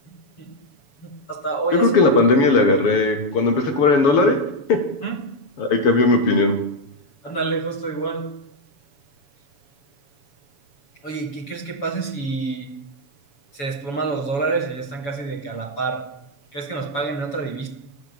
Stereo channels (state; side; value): late; right; 7.1 ms